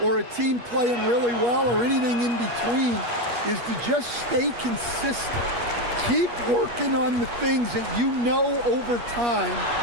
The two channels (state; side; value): late; left; 8.4 ms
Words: or a team playing really well or anything in between, is to just stay consistent. Keep working on the things that you know over time